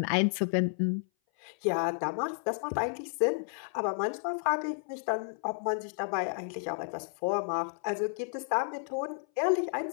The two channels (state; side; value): silent; right; 57 dB below the other